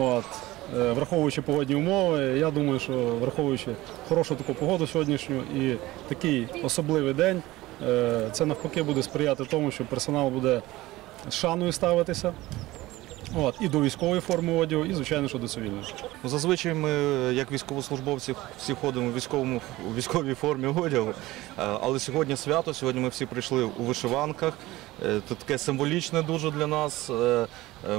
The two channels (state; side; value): quieter; left; 18.3 dB